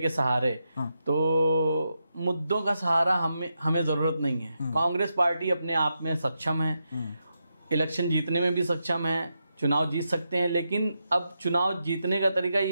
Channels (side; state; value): both; inverted; correlation -0.85